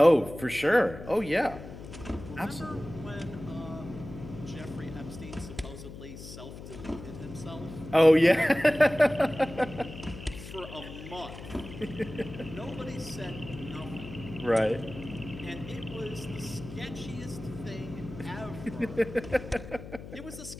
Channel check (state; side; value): noise; left; hum, 13 dB below the sound